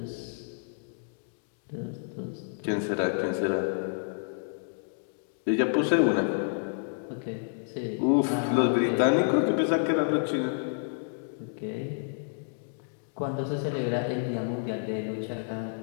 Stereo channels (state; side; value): silent; right; digital silence